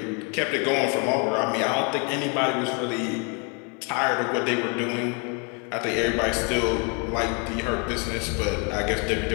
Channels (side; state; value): right; quieter; 35.2 dB